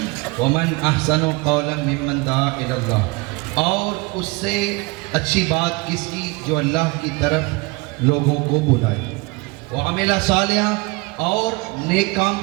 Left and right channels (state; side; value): quieter; left; 25.9 dB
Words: ومن احسن قولا ممن دعا الی اللہ، اور اس سے اچھی بات کس کی جو اللہ کی طرف لوگوں کو بلائے، وعمل صالحا، اور نیک کام